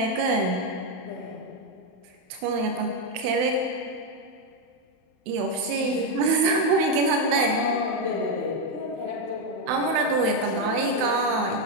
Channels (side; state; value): left; late; 32 ms